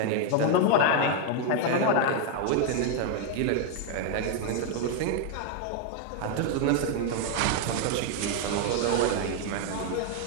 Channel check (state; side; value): different; both; correlation 0.01